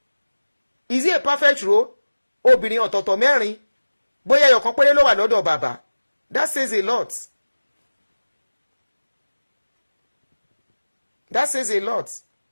Is he a perfect role? Obìnrin ọ̀tọ̀ọ̀tọ̀ mẹ́rin. Bóyá ẹyọ̀kan péré ló wà lọ́dọ̀ bàbá. That says a lot. That says a lot.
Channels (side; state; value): both; inverted; correlation -1.00